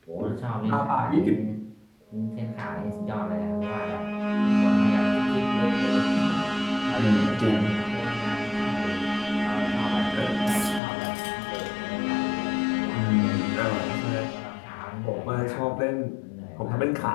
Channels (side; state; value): right; drops out; at 10.8 s